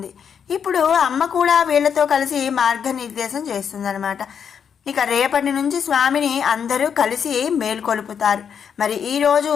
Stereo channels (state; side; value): quieter; right; 7.4 dB